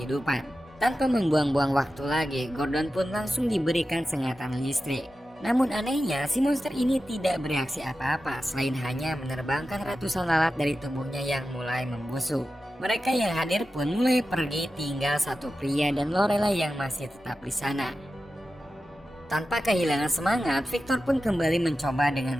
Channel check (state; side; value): normal; both; correlation 0.92